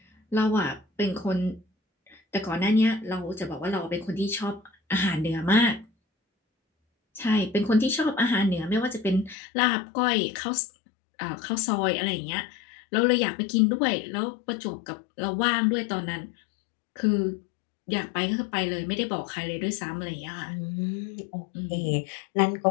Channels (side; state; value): right; drops out; at 9.3 s